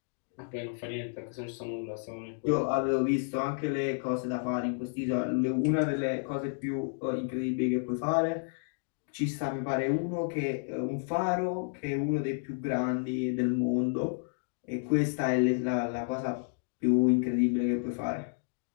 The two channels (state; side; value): silent; right; digital silence